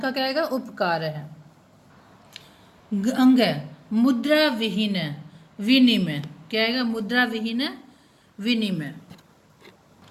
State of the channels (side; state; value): both; identical; correlation 1.00